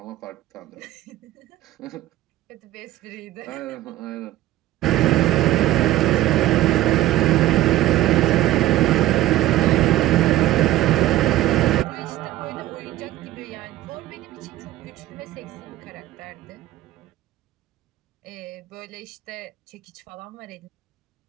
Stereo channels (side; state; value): left; quieter; 15.1 dB